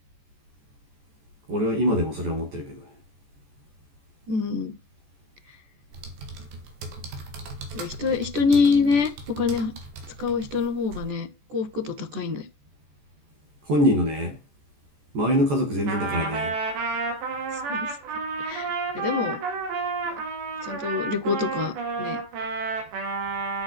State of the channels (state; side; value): late; left; 14 ms